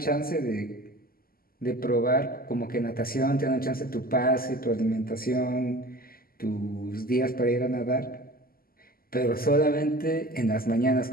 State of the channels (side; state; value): right; late; 0.42 ms